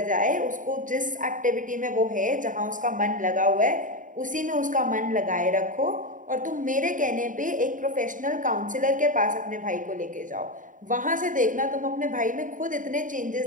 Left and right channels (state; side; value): late; left; 0.38 ms